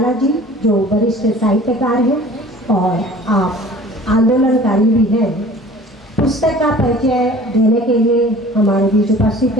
जी, जो वरिष्ठ साहित्यकार हैं और आप आंदोलनकारी भी हैं। पुस्तक का परिचय देने के लिए हमारे बीच उपस्थित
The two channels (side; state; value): both; normal; correlation 0.46